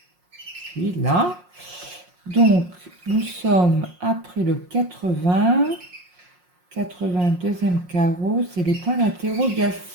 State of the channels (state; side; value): late; left; 5.6 ms